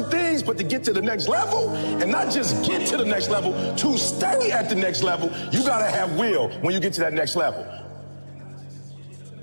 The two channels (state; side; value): inverted; both; correlation -1.00